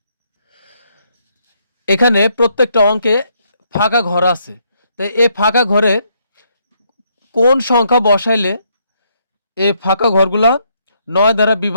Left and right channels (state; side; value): inverted; both; correlation -0.73